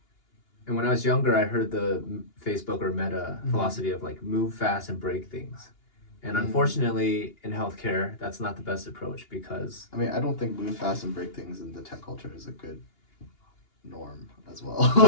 And when I was younger, I heard the Facebook or Meta philosophy of like move fast and break things. And unfortunately, in healthcare, that's not the best approach because I mean, I don't think move fast and break things in the tech culture is a good norm as well.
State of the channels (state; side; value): late; right; 2.8 ms